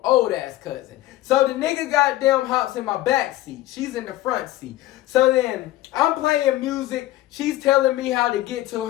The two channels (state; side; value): quieter; right; 15.6 dB